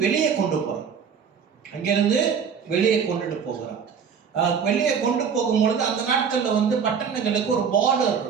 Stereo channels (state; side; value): quieter; left; 6.8 dB